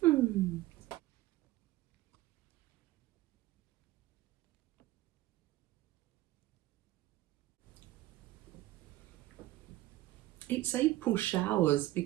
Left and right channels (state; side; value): quieter; left; 16.5 dB